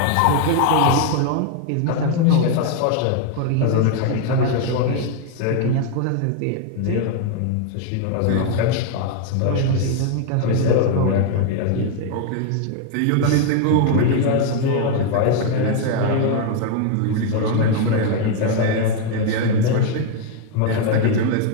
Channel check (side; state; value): both; different; correlation 0.00